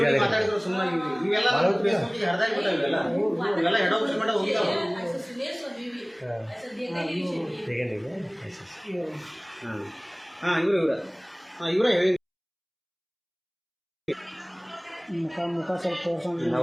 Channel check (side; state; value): both; identical; correlation 1.00